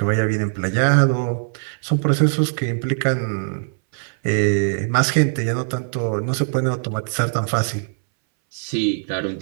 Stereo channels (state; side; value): silent; left; 63 dB below the other